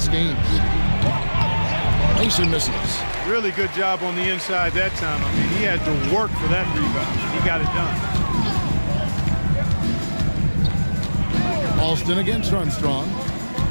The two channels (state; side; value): inverted; both; correlation -1.00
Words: game. Mason misses. Really good job on the inside that time. I mean, he had to work for that rebound. He got it done. Alston against Armstrong.